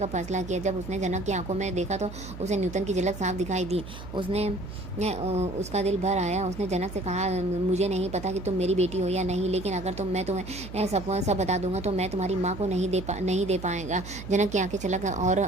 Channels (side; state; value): right; noise; hum, 12 dB below the sound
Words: फैसला किया। जब उसने जनक की आंखों में देखा तो उसे न्यूटन की झलक साफ दिखाई दी। उसका दिल भर आया। उसने जनक से कहा, मुझे नहीं पता कि तुम मेरी बेटी हो या नहीं, लेकिन अगर मैं तुम्हें सब बता दूंगा तो मैं तुम्हारी माँ को नहीं दे पाएगा। जनक की आंखें